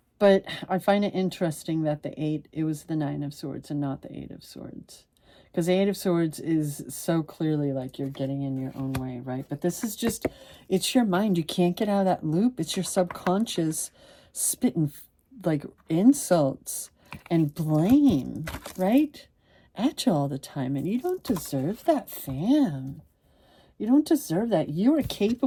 But I find it interesting that the 8, it was the 9 of Swords and not the 8 of Swords. Because the 8 of Swords is so clearly like you're getting in your own way, right? But this is just, it's your mind. You can't get out of that loop. It's your subconscious spitting like insults and blame, right? At you all the time. And you don't deserve that, fam. You don't deserve that. You are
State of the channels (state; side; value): identical; both; correlation 1.00